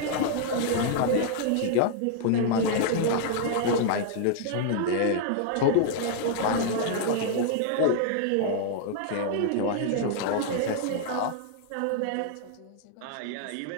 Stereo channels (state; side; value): different; both; correlation -0.01